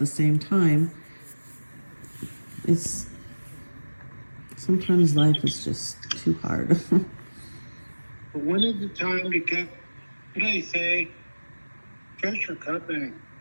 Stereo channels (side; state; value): both; inverted; correlation -1.00